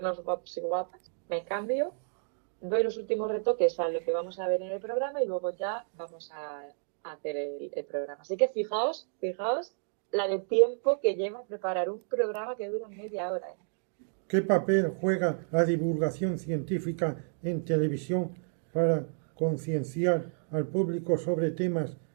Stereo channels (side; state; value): left; silent; digital silence